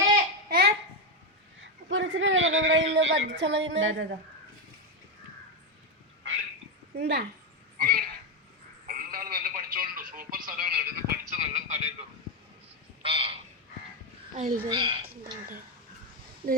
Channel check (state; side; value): normal; both; correlation 0.08